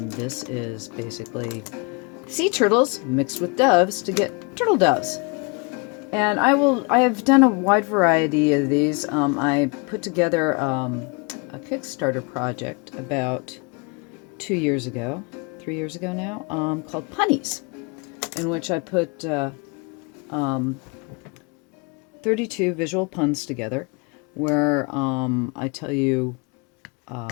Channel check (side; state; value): right; quieter; 31.0 dB